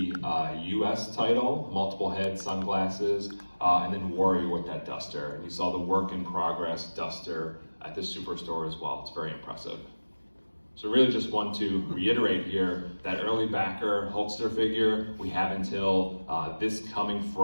US title, multiple head sunglasses, and then Warrior with that duster. And you saw the work in progress duster at the Superstore as well. It's very impressive. So really just want to reiterate here that early backer Hulkster figure, we have until this coming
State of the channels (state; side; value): inverted; both; correlation -1.00